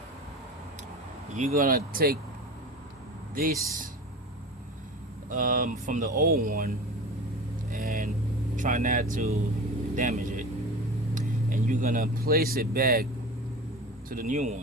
You're gonna take this from the old one and try not to damage it, and you're gonna place it back to the new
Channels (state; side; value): normal; both; correlation 0.33